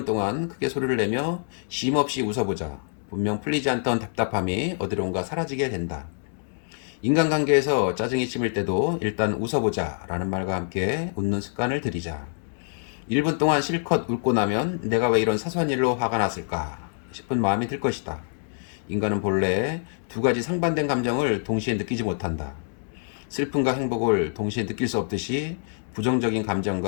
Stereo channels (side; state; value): right; silent; digital silence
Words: 동안 크게 소리를 내며 쉼없이 웃어보자. 분명 풀리지 않던 답답함이 어디론가 사라지게 된다. 인간관계에서 짜증이 치밀 때도 일단 웃어보자 라는 말과 함께 웃는 습관을 들이자. 1분 동안 실컷 웃고 나면 내가 왜 이런 사소한 일로 화가 났을까 싶은 마음이 들 것이다. 인간은 본래 두 가지 상반된 감정을 동시에 느끼지 못한다. 슬픔과 행복을 동시에 느낄 수 없듯이 부정적인